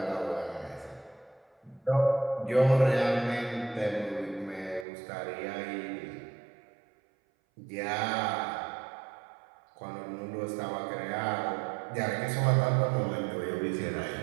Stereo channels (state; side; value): drops out; left; at 4.9 s